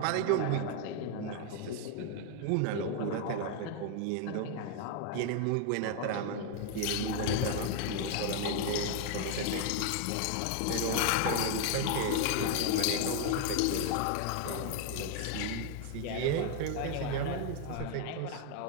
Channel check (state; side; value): different; both; correlation 0.01